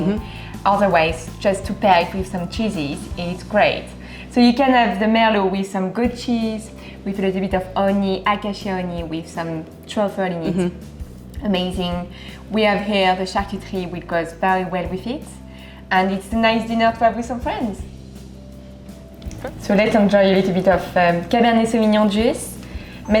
Mm-hmm. Otherwise, just to pair it with some cheeses, it's great. So you can have the merlot with some goat cheese, with a little bit of honey, acacia honey, with some truffle in it. Mm-hmm. Amazing. We have here the charcuterie, which goes very well with it. And it's a nice dinner to have with some friends. So let's enjoy a little bit of Cabernet Sauvignon juice,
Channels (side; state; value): both; identical; correlation 1.00